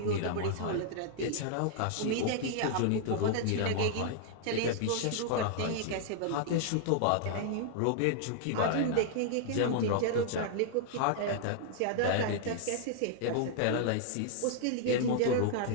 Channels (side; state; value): both; different; correlation -0.01